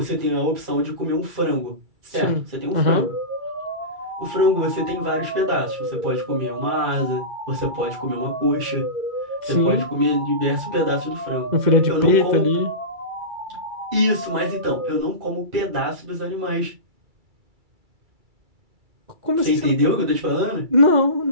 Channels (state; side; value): late; left; 2.3 ms